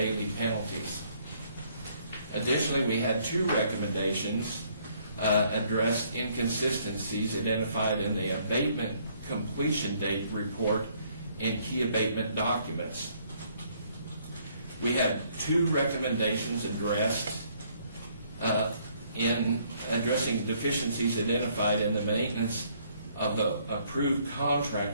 penalties. Additionally, we had 2 recommendations addressed inconsistencies identified in the abatement completion date report and key abatement documents. We had 2 recommendations addressed in addressing deficiencies identified in the maintenance of the approved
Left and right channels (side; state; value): both; inverted; correlation -0.66